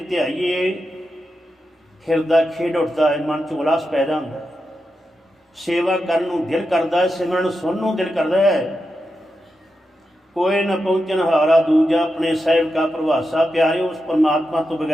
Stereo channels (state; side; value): normal; both; correlation 0.88